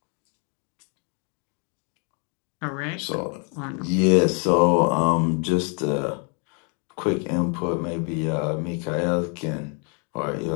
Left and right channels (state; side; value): quieter; right; 37.1 dB